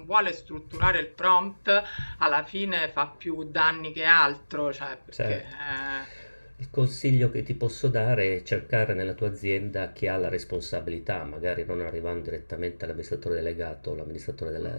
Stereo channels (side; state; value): both; inverted; correlation -1.00